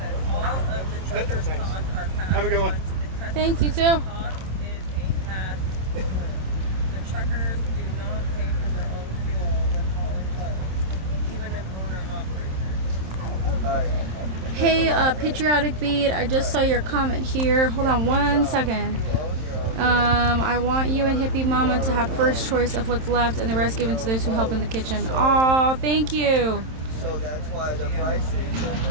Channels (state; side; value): late; left; 27 ms